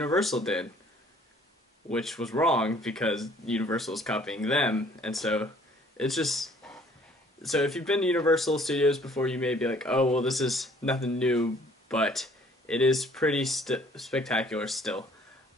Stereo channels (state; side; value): normal; both; correlation 0.58